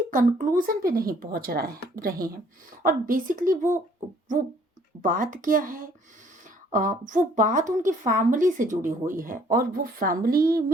कंक्लूजन पे नहीं पहुंच रहे हैं। और बेसिकली वो बात क्या है, वो बात उनकी फैमिली से जुड़ी हुई है, और वो फैमिली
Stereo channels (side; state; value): both; normal; correlation 0.61